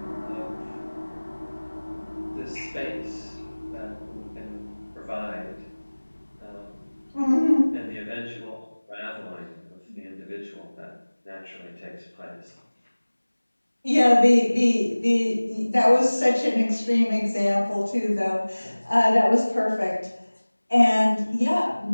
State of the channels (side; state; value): both; inverted; correlation -1.00